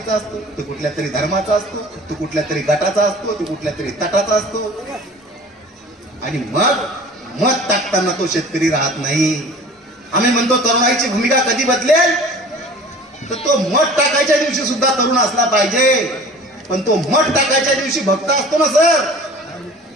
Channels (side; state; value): both; normal; correlation 0.44